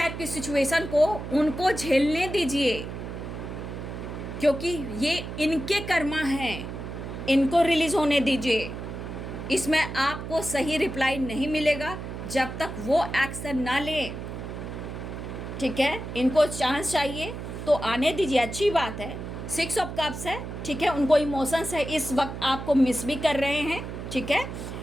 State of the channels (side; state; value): right; noise; hum, 8 dB below the sound